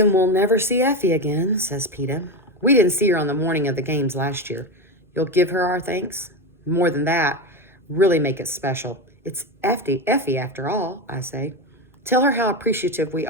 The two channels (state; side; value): normal; both; correlation 0.17